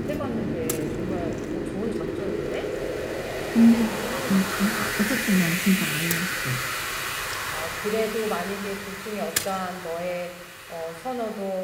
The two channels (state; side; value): identical; both; correlation 1.00